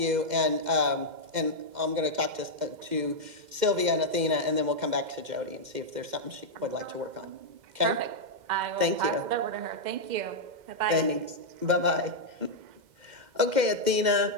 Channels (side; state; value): left; late; 2.1 ms